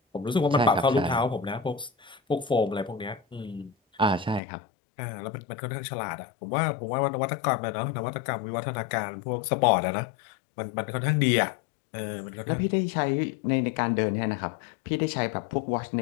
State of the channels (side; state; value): right; drops out; at 4.4 s